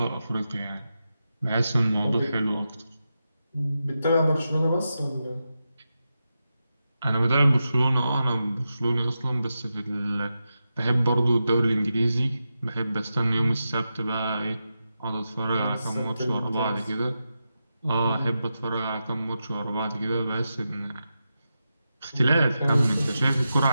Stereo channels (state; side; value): inverted; both; correlation -0.89